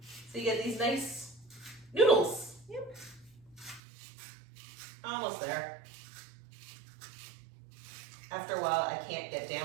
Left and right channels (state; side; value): drops out; left; at 3.8 s